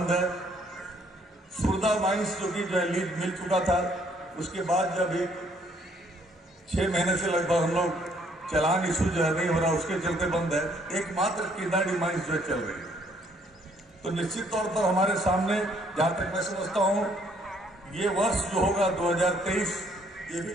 है। सुरदा माइंस जो कि जो है लीज मिल चुका था, उसके बाद जब एक 6 महीने से लगभग हम लोग चालान इशू जो है नहीं हो रहा, उसके चलते बंद है। एकमात्र किंदाडी माइंस जो है चल रही है। तो निश्चित तौर पर हमारे सामने जहां तक मैं समझता हूं ये वर्ष जो होगा 2023 ये भी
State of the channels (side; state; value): both; normal; correlation 0.65